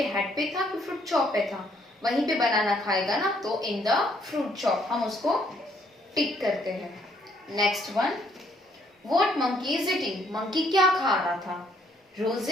हेड पे था कि फ्रूट शॉप पे था? वहीं पे बनाना खाएगा ना, तो इन द फ्रूट शॉप। हम उसको टिक करते हैं। Next one, what monkey is eating? Monkey क्या खा रहा था?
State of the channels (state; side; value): normal; both; correlation 0.68